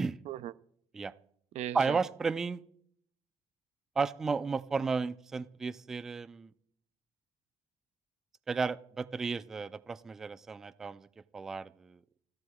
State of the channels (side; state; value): left; quieter; 4.6 dB